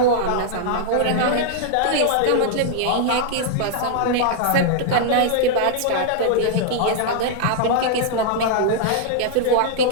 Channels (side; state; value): both; different; correlation -0.01